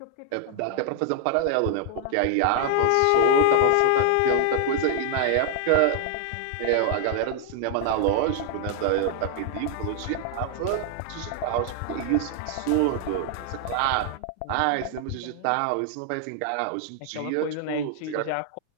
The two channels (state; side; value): different; both; correlation 0.00